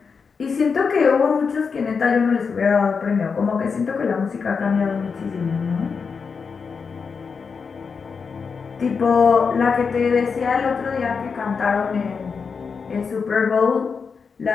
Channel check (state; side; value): quieter; right; 5.5 dB